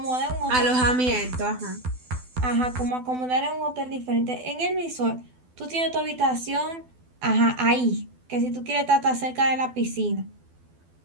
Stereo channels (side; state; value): left; late; 12 ms